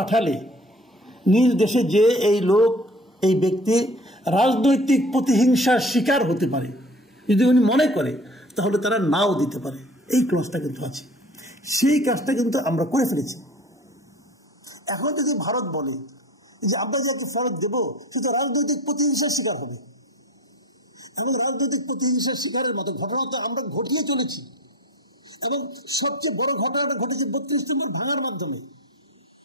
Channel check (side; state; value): both; normal; correlation 0.43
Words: নিজ দেশে যে এই ব্যক্তি রাজনৈতিক প্রতিহিংসার শিকার হতে পারে, যদি উনি মনে করে, তাহলে তারা নাও দিতে পারে। এই ক্লজটা কিন্তু আছে। সেই কাজটা কিন্তু আমরা করে ফেলেছি। এখন যদি ভারত বলে যে আমরা যাকে ফেরত দেবো সেটা রাজনৈতিক প্রতিহিংসার শিকার হবে, এবং রাজনৈতিক প্রতিহিংসার শিকারের মতো ঘটনা তো আমরা ঘটিয়ে চলেছি। এবং সবচেয়ে বড় ঘটনাটা ঘটেছে ৩২ নম্বর ভাঙার মাধ্যমে।